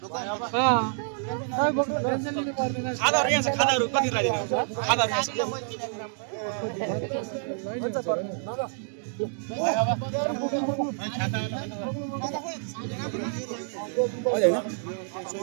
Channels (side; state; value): left; silent; digital silence